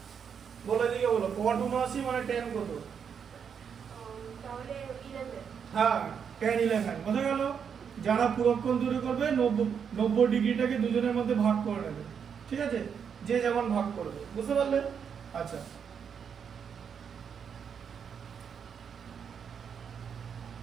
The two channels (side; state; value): left; quieter; 7.2 dB